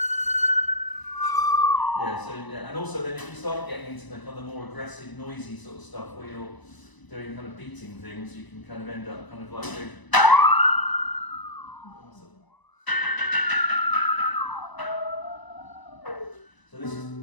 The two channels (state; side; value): late; right; 1.0 ms